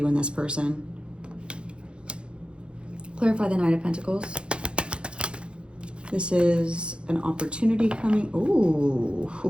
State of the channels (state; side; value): late; left; 0.056 ms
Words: and this person. Clarify the Knight of Pentacles. This is an opportunity coming.